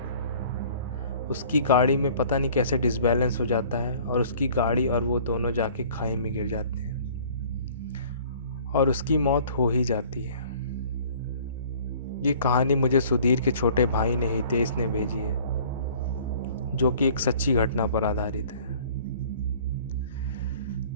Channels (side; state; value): both; inverted; correlation -0.51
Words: उसकी गाड़ी में पता नहीं कैसे डिसबैलेंस हो जाता है, और उसकी गाड़ी और वो दोनों जाके खाई में गिर जाते हैं, और उसकी मौत हो ही जाती है। ये कहानी मुझे सुधीर के छोटे भाई ने हितेश ने भेजी है, जो कि एक सच्ची घटना पर आधारित है।